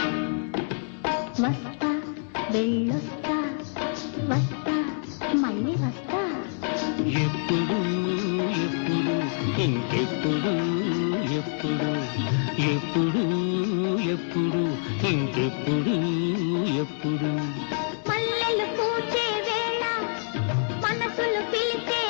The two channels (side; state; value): right; silent; 61 dB below the other